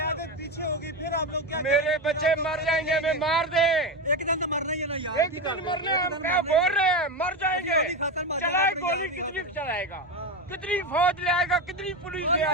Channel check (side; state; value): both; normal; correlation 0.16